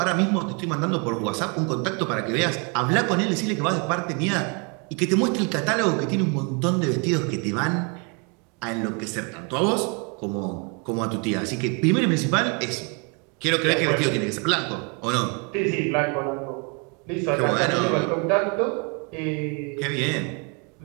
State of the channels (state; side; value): quieter; left; 33.9 dB